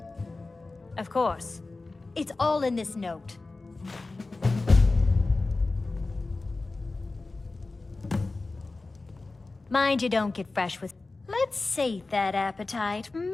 Of course. It's all in this note. Mind you don't get fresh with... Let's sate that appetite, hmm?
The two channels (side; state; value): right; quieter; 3.4 dB